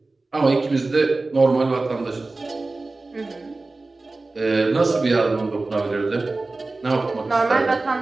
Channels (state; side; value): quieter; left; 3.3 dB